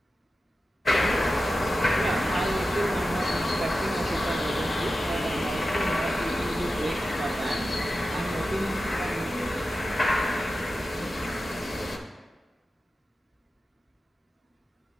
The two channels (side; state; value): both; normal; correlation 0.92